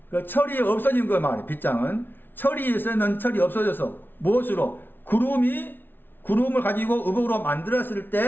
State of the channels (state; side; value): late; right; 0.099 ms